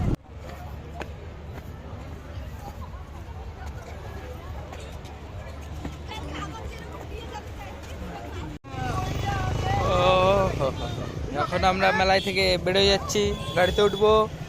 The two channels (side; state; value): both; identical; correlation 1.00